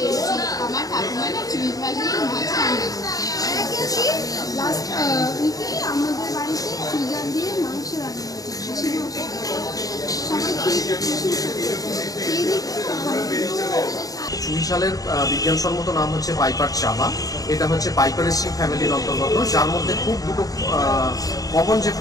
আমার ঠাকুমা না চুইঝাল দিয়ে মাছ রান্না করছে। লাস্ট উইকে আমাদের বাড়িতে চুইঝাল দিয়ে মাংস রান্না হয়েছে। সবাই খেয়ে দেখতে চুইঝালের বিজ্ঞানসম্মত নাম হচ্ছে পাইপার চাবা। এটা হচ্ছে পাইপারেসি ফ্যামিলির অন্তর্গত, যার মধ্যে খুব দুটো কমন যে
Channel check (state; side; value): late; right; 0.18 ms